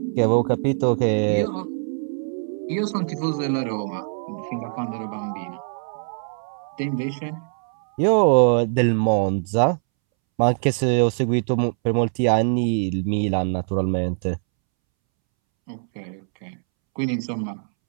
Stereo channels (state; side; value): silent; left; 63 dB below the other